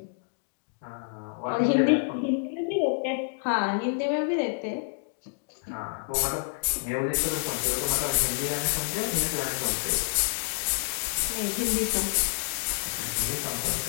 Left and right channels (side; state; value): right; silent; digital silence